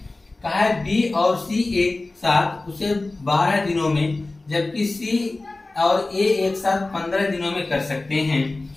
कहा है बी और सी एक साथ उसे 12 दिनों में, जबकि सी और ए एक साथ 15 दिनों में कर सकते हैं।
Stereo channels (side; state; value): right; quieter; 3.1 dB